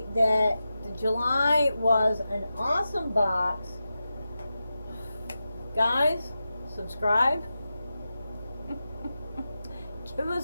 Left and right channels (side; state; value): both; inverted; correlation -0.92